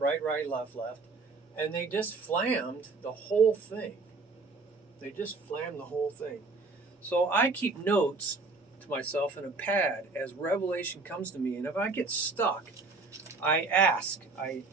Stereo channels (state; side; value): quieter; left; 3.8 dB